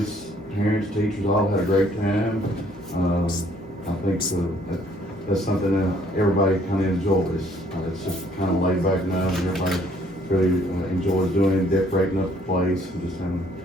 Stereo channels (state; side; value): normal; both; correlation 0.63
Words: parents, teachers, all had a great time. I think that's something that everybody kinda enjoys, it's just kinda laid back now, and everybody really enjoys doing, decorating up the place, and just having,